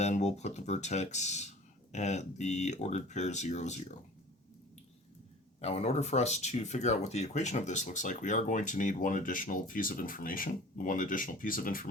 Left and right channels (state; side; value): normal; both; correlation 0.43